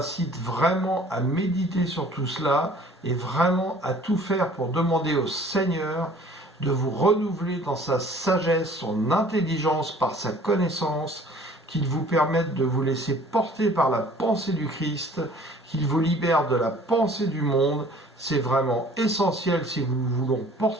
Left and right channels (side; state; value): both; normal; correlation 0.51